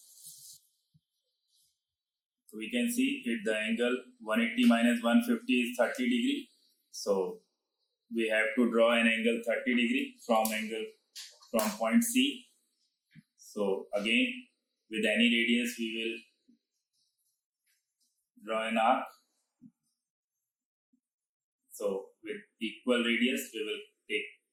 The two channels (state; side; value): identical; both; correlation 1.00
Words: So we can see if the angle 180 minus 150 is 30 degree. So we have to draw an angle 30 degree from point C. So again, with any radius we will draw an arc. So with equal radius we will take